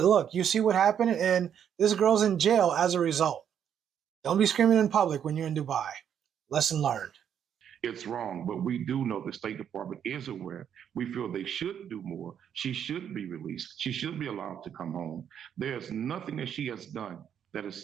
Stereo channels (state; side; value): quieter; left; 8.8 dB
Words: look, you see what happened, and this girl's in jail as a result. Don't be screaming in public when you're in Dubai. Lesson learned. It's wrong, but we do know the State Department is aware. We feel they should do more. She should be released. She should be allowed to come home. There's nothing that she has done that